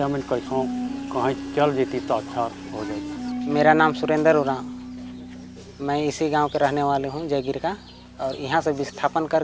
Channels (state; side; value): identical; both; correlation 1.00